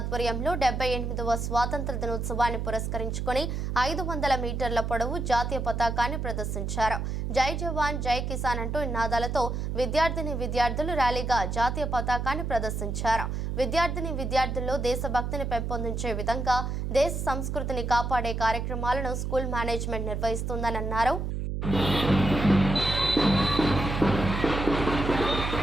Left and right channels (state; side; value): noise; right; hum, 2 dB below the sound